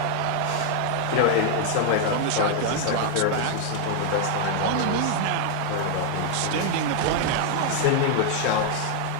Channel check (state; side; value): different; both; correlation 0.00